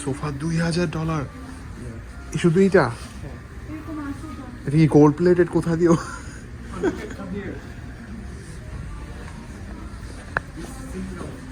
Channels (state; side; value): identical; both; correlation 1.00